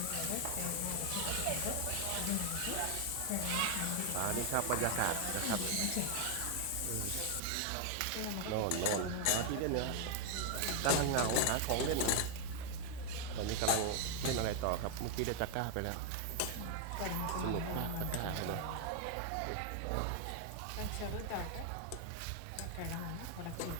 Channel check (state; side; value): different; both; correlation 0.00